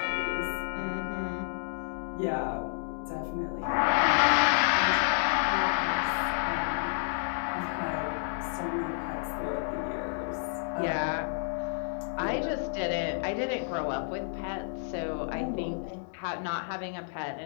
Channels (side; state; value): right; silent; 57 dB below the other